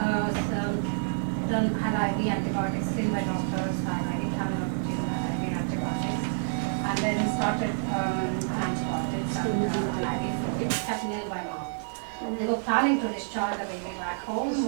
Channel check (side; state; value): left; silent; 59 dB below the other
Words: had IV antibiotics seen by doctors, IV antibiotics, and then started antibiotics and IV fluid, kept nil by mouth. They were planning to discharge the baby back home